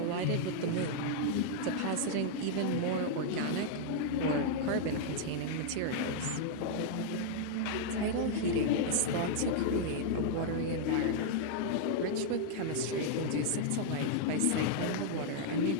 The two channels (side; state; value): both; different; correlation -0.01